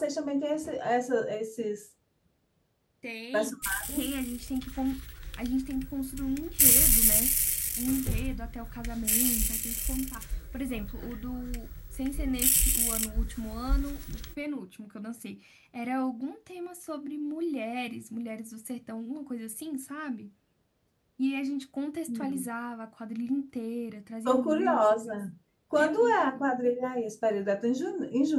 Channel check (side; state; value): both; identical; correlation 1.00